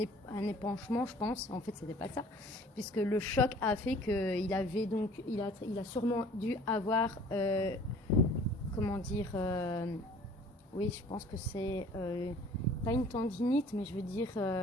je pense. En fait, c'était pas ça. Puisque le choc a fait qu'il avait donc... Il a sûrement dû avoir... comment dire... oui, je pense que c'est... pas une tendinite, mais je veux dire...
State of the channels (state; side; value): normal; both; correlation 0.51